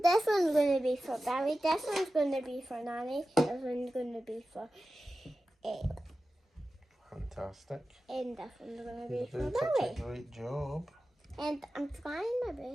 one's gonna be for Barry. This one's gonna be for Nanny. This one's gonna be for. Fantastic. And this one's gonna be You're for doing such a Barry. great job. And I'm trying my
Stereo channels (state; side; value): normal; both; correlation 0.94